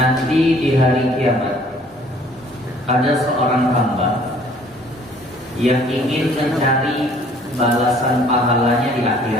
di hari kiamat ada seorang hamba yang ingin mencari balasan pahalanya di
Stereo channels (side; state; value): both; normal; correlation 0.56